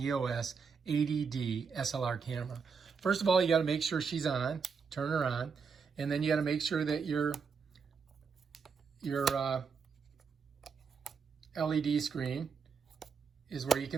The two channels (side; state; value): left; quieter; 5.7 dB